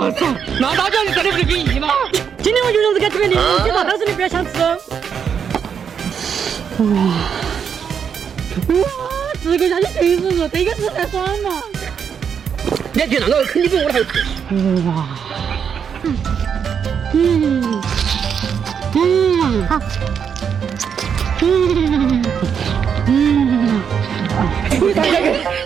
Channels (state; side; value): quieter; left; 7.3 dB